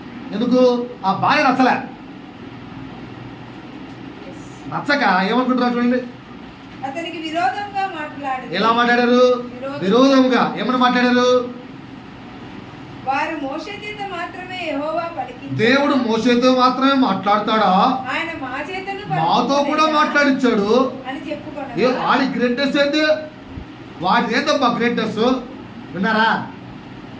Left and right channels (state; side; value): identical; both; correlation 1.00